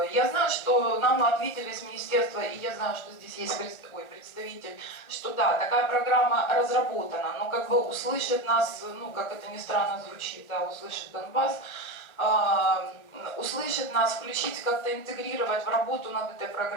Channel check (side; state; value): right; late; 1.4 ms